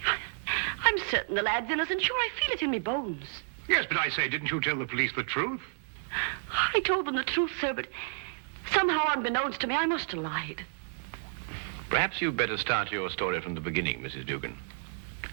I'm certain the lad's innocent. Sure, I feel it in my bones. Yes, but I say, didn't you tell the police the truth? I told them the truth, sir, but somehow unbeknownst to me, I must have lied. Perhaps you'd better start your story from the beginning, Mrs. Dugan.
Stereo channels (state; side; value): quieter; left; 38.7 dB